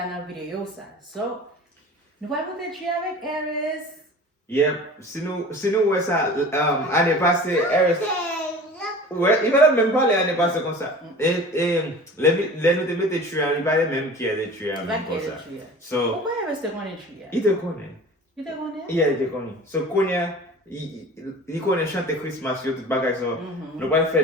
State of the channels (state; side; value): normal; both; correlation 0.40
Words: la vidéo ça. So, nous allons monter tree avec Eris. Yep, sinon ouais ça année passée Eris. Ouais, il va même parler l'année passée comme ça. Et les nous te mettre tree, il va même qui a des tree comme ça. So, pourquoi Eris te connaît tree? Il te connaît. Il te connaît? Yeah, il te connaît. So connaît il connaît chanter Christmas yo tout bagage so. Nous va